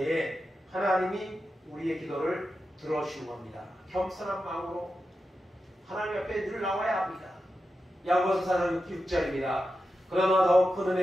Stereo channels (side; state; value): both; normal; correlation 0.90